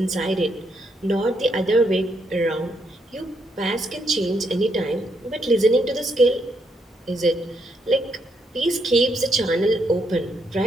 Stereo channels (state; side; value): normal; both; correlation 0.76